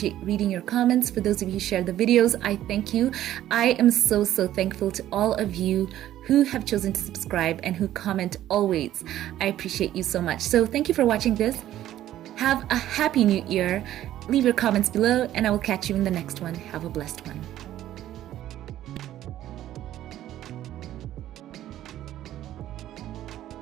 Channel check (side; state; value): left; quieter; 12.9 dB